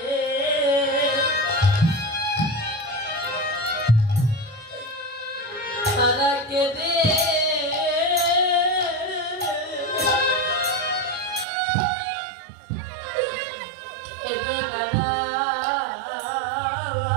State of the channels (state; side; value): drops out; left; at 11.5 s